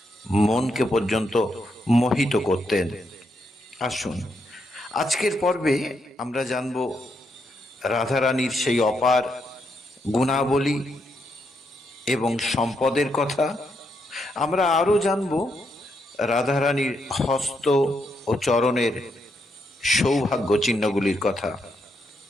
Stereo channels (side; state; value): both; normal; correlation 0.79